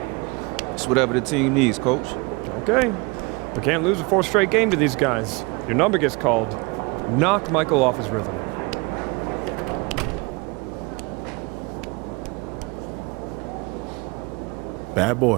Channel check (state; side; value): quieter; left; 27.5 dB